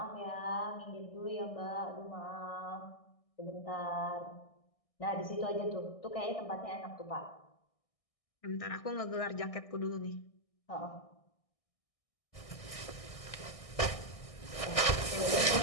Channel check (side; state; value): right; late; 1.6 ms